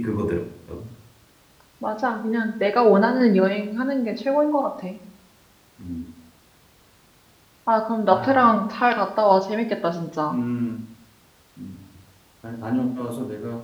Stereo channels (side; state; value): both; identical; correlation 1.00